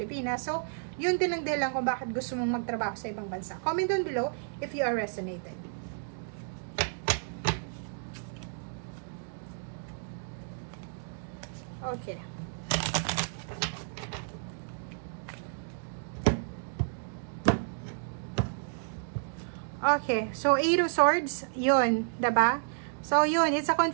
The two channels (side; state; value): left; silent; digital silence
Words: So, yun din ang dahilan kung bakit gusto mong magtrabaho sa ibang bansa. Comment down below if you are resonated. Okay. Okay, so Eight of Swords, yun, diba? So, yun, it's a